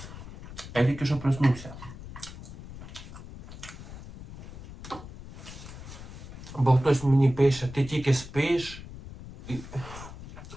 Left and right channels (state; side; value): noise; left; rumble, 13 dB below the sound